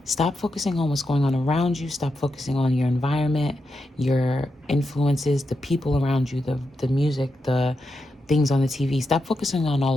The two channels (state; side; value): normal; both; correlation 0.86